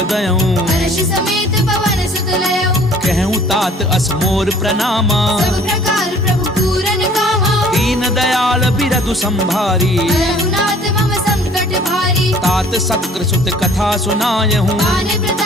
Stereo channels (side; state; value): both; normal; correlation 0.53